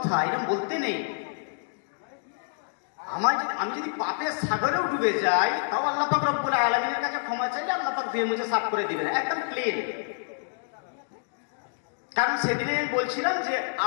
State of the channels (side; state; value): right; silent; digital silence